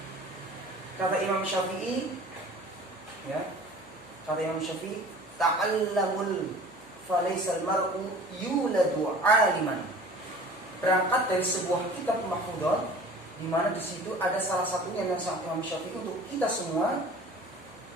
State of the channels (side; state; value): left; noise; hum, 26 dB below the sound